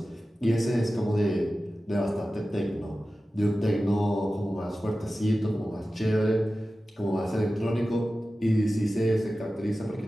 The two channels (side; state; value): both; normal; correlation 0.95